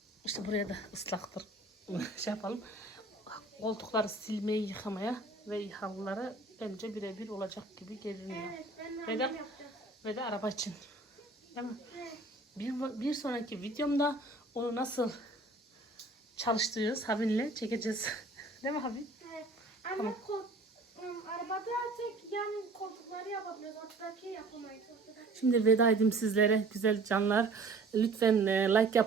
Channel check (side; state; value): left; quieter; 3.3 dB